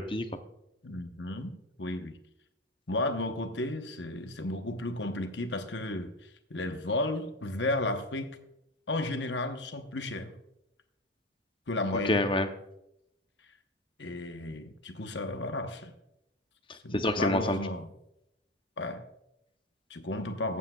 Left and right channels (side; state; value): both; normal; correlation 0.24